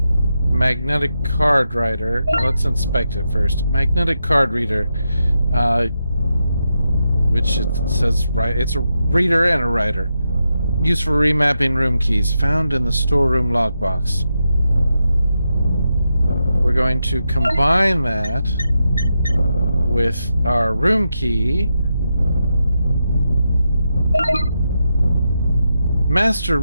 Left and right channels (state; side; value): inverted; both; correlation -0.86